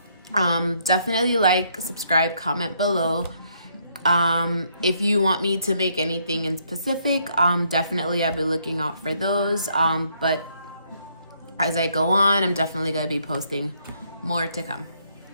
Definitely like, subscribe, comment below. If you want me to make anything in specific, definitely I'll be looking out for those. But as I go on, I'm definitely going to be posting more to come.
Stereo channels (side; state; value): both; inverted; correlation -0.70